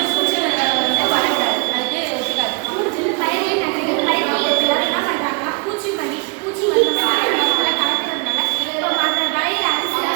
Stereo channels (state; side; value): quieter; left; 31.5 dB